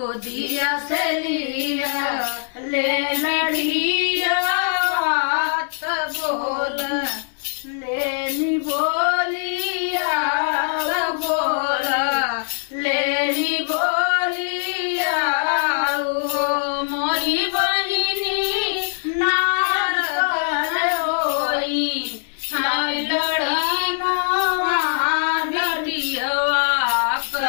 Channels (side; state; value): right; silent; digital silence